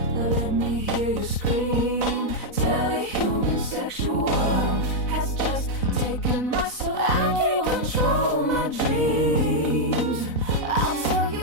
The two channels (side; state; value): right; late; 4.0 ms